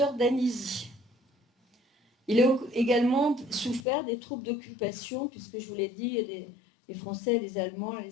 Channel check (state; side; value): drops out; right; at 3.9 s